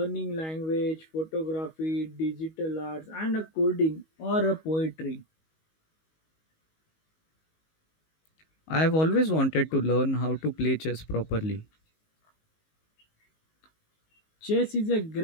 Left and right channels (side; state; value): right; late; 19 ms